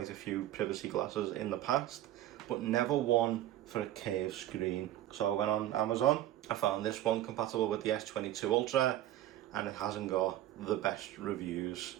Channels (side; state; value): left; quieter; 13.4 dB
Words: a few privacy glasses in the past, but never one for a curved screen. So I went on Amazon, I found this one compatible with the S22 Ultra, and it hasn't got the best reviews.